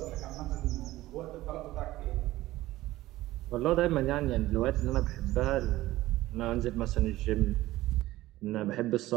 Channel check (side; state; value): left; quieter; 16.6 dB